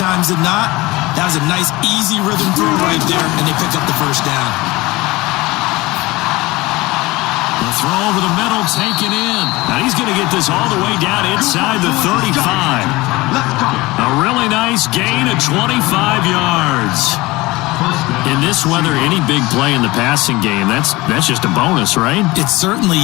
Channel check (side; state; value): right; quieter; 20.9 dB